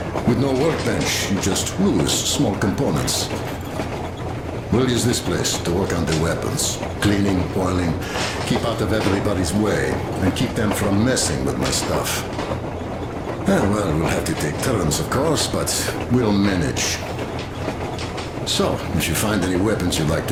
With no workbench, you just lose small components. We'll use this place to work on the weapons. Cleaning, oiling, keep out of everybody's way, and keep them from messing with my stuff. Well, we'll have to take turns, of course, but we'll manage. So, if you find any weapons you'd like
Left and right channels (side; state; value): both; identical; correlation 1.00